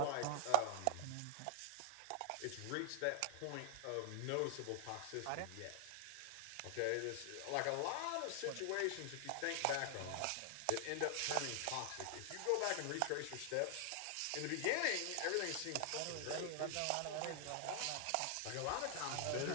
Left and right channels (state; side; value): different; both; correlation -0.01